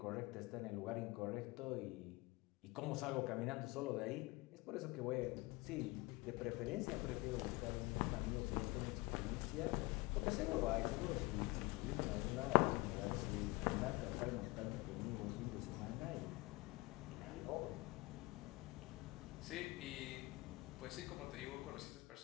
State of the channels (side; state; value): right; quieter; 22.8 dB